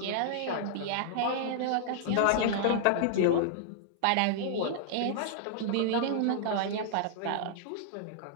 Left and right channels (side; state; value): both; different; correlation -0.01